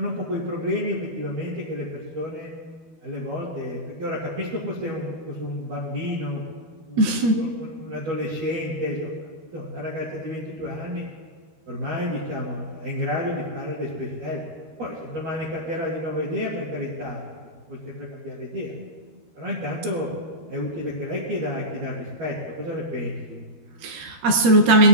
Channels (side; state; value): left; late; 13 ms